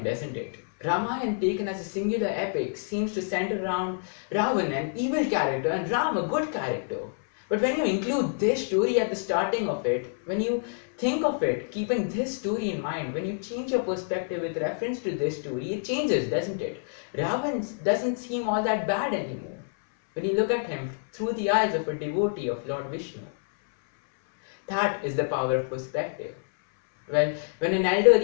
doesn't it? Ramayana, taken as a singular epic, seems to center around Ravan, an evil character, and Ram, a good character. But when you include this story at the starting of it, when you think of it, keeping this story in mind, when you change your perspective with reference to this story, it changes, doesn't it? Ravan doesn't seem all that bad anymore when you look at him through the eyes of a devotee of Lord Vishnu. That is the power of perspective. Well, when an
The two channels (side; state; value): right; silent; 60 dB below the other